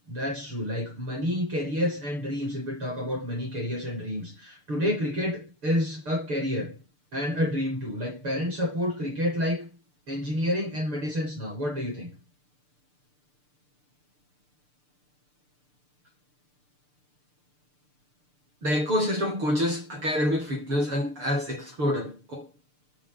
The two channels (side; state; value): left; late; 6.7 ms